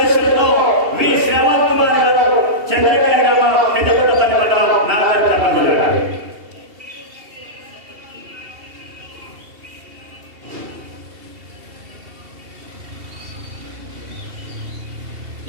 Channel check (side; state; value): left; late; 2.7 ms